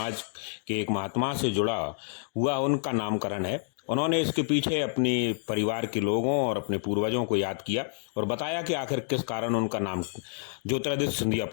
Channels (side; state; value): right; silent; digital silence